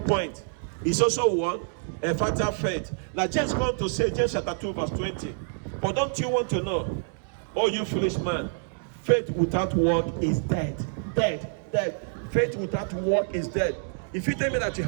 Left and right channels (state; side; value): silent; left; digital silence